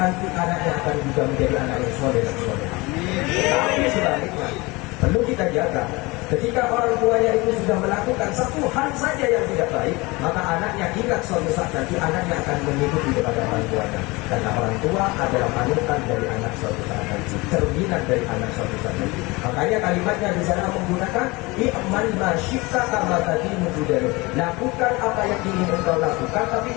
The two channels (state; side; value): quieter; right; 23.8 dB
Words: anaknya akan juga menjadi anak yang soleh dan soleh. Tapi sebaliknya perlu kita jaga. Ketika orang tuanya itu sudah melakukan satu hal saja yang tidak baik, maka anaknya ingat suatu saat nanti anaknya akan mengikuti kepada orang tuanya. Karena orang tua adalah panutan dari anak suatu saat nanti, cerminan dari anak suatu saat nanti. Makanya kalimatnya di sana menggunakan i'mal ma syi'ta kama tadinu tudanu. Lakukan apa yang ingin engkau lakukan, tapi